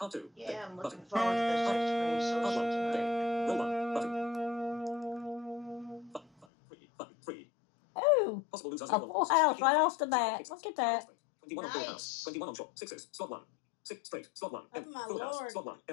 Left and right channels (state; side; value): drops out; right; at 6.5 s